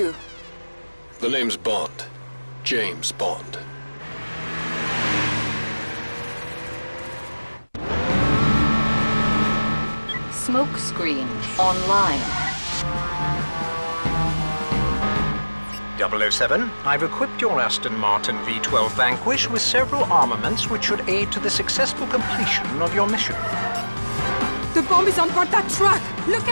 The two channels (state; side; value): inverted; both; correlation -1.00